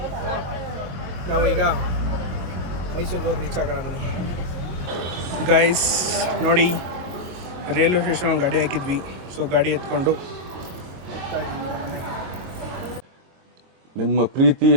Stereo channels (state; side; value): late; left; 22 ms